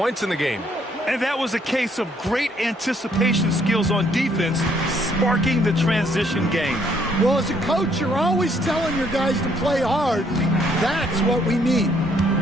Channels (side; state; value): both; normal; correlation 0.67